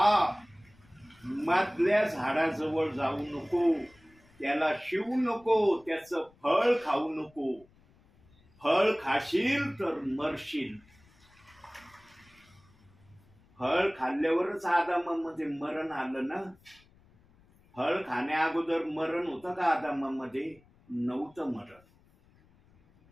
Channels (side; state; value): left; noise; rumble, 30 dB below the sound